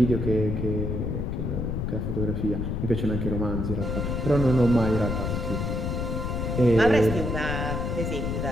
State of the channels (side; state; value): left; noise; rumble, 1 dB below the sound